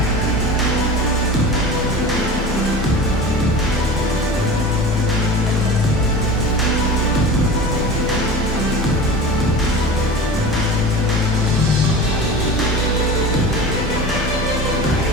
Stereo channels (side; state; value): both; normal; correlation 0.33